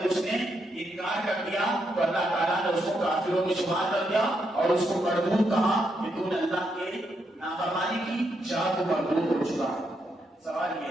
اس نے انکار کر دیا تو اللہ تعالیٰ نے اس کو کافروں میں شمار کر دیا اور اس کو مردود کہا کہ تو نے اللہ کے نافرمانی کی, جا تو مردود ہو چکا. سوال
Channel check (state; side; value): normal; both; correlation 0.80